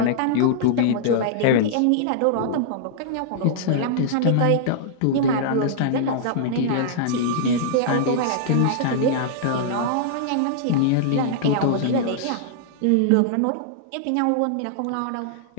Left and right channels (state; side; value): different; both; correlation -0.01